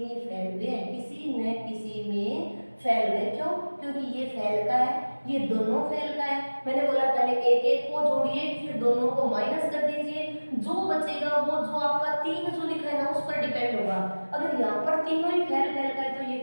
फेल हुए हैं, किसी न किसी में फेल हुए। क्यों? क्योंकि ये फेल का है, ये दोनों फेल का है। मैंने बोला पहले एक एक को जोड़िए, फिर दोनों को माइनस कर दीजिए, जो बचेगा वो जो आपका 3 जो लिखा है ना उस पर डिपेंड होगा। अगर यहाँ पर तीनों ही फेल का है तो ये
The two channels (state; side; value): inverted; both; correlation -1.00